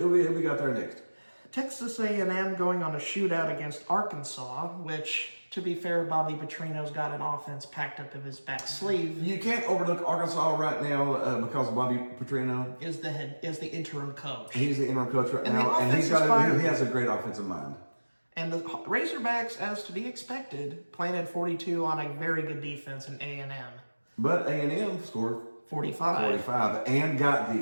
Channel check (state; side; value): inverted; both; correlation -1.00